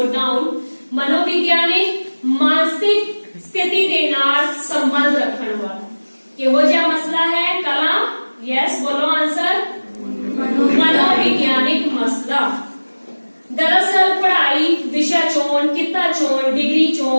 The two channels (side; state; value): both; inverted; correlation -1.00